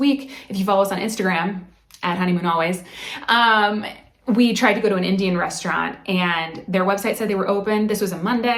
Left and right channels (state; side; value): identical; both; correlation 1.00